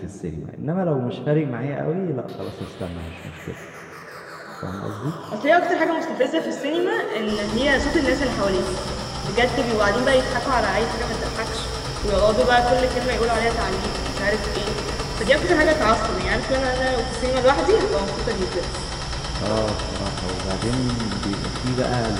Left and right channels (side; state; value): both; identical; correlation 1.00